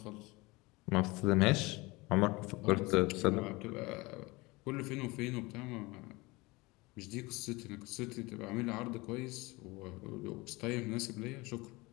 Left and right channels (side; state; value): right; quieter; 23.3 dB